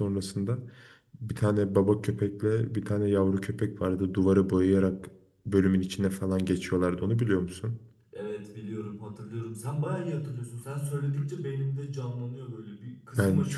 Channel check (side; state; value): both; identical; correlation 1.00